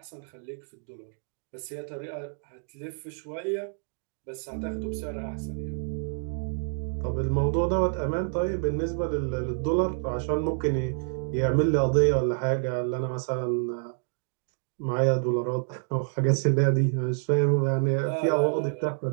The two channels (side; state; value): left; silent; 59 dB below the other